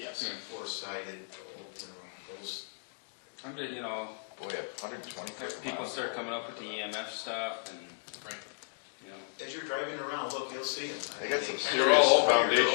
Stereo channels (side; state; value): right; silent; digital silence